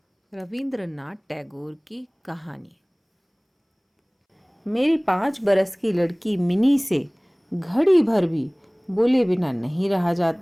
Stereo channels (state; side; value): identical; both; correlation 1.00